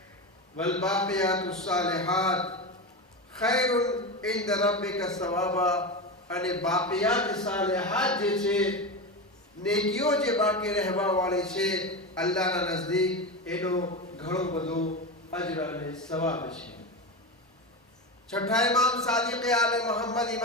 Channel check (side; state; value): both; normal; correlation 0.20